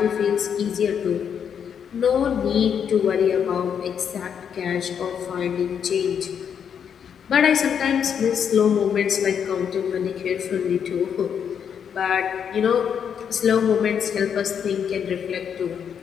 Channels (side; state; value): right; quieter; 7.8 dB